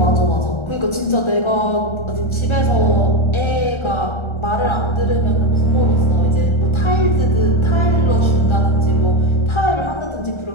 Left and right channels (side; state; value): right; late; 1.4 ms